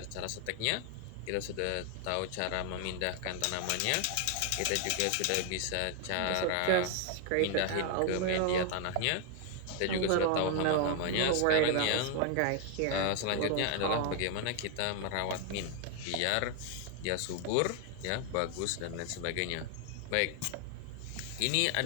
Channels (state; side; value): different; both; correlation 0.01